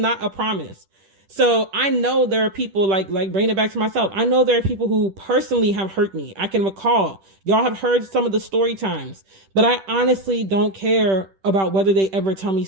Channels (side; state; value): left; late; 10 ms